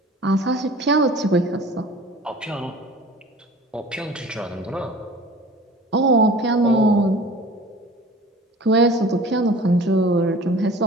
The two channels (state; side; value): normal; both; correlation 0.43